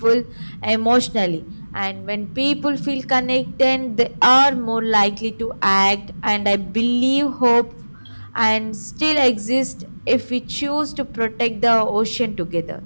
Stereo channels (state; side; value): inverted; both; correlation -1.00